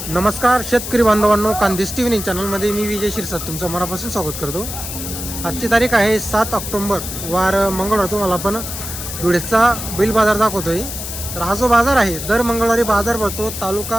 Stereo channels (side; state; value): left; noise; hiss, 7 dB below the sound